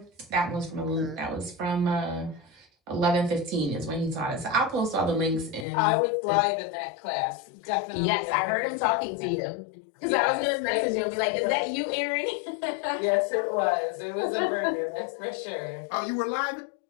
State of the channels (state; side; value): drops out; right; at 5.7 s